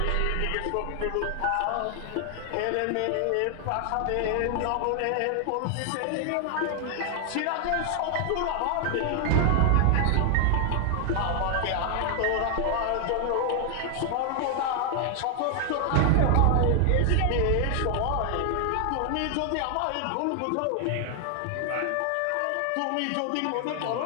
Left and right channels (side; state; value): both; different; correlation 0.00